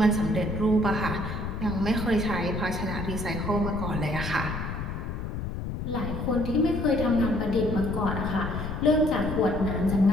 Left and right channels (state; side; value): noise; left; rumble, 5 dB below the sound